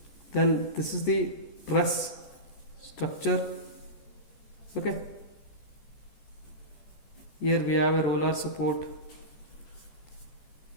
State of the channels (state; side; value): late; right; 14 ms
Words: Then this is the truss structure. Okay, here we have a roller support,